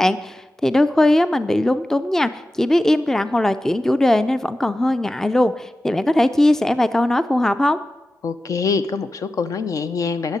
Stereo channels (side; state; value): both; normal; correlation 0.93